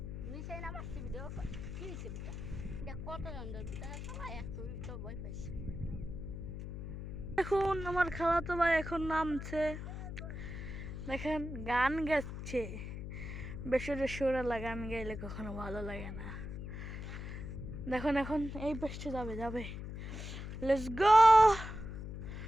দেখুন আমার খালাতো ভাই এখন নামছে, দেখেন গান গাচ্ছে। বেসরে সুরালা গান গাইলে কখনো ভালো লাগে না। দেখুন এখন এই পেছতে যাবে। Let's go.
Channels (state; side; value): noise; left; hum, 7 dB below the sound